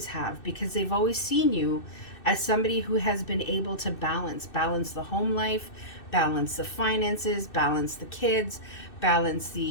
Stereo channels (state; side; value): late; right; 2.6 ms